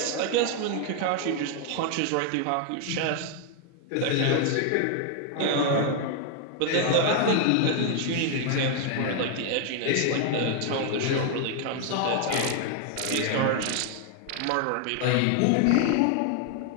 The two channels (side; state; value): both; different; correlation 0.00